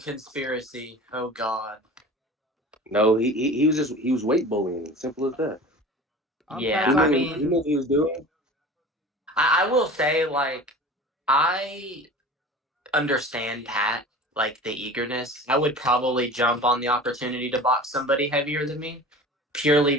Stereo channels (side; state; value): both; normal; correlation 0.38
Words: conspiracy. Oh God. no, he was weight bullying. Simple as that. Yeah, He I knew mean, what he was doing. I will say, like, I understand Pat, like the eagerness. I would probably jump on the opportunity to box somebody heavier than me, purely